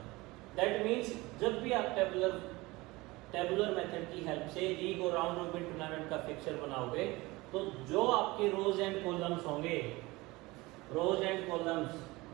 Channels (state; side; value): quieter; left; 21.6 dB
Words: that means जब भी आप टेबुलर मेथड की हेल्प से लीग और राउंड रॉबिन टूर्नामेंट का फिक्सचर बनाओगे तो जो आपके रोज एंड कॉलम्स होंगे, rows and columns,